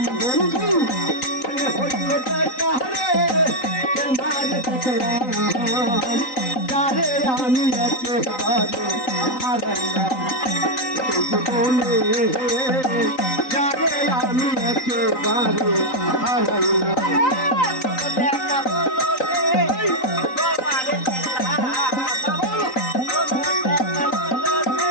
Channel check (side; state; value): right; late; 3.9 ms